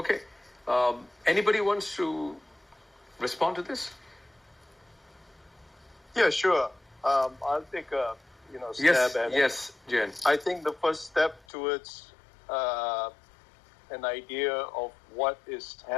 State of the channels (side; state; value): right; drops out; at 11.4 s